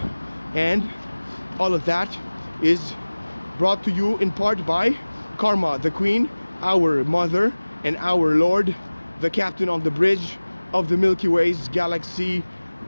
And all of that is brought to you in part by Karma, the Queen, our mother, and our Lord, the captain on the bridge of the Milky Way's galaxy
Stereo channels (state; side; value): inverted; both; correlation -1.00